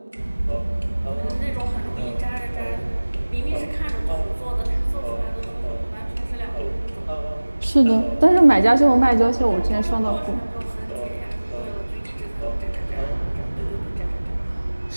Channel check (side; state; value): both; inverted; correlation -1.00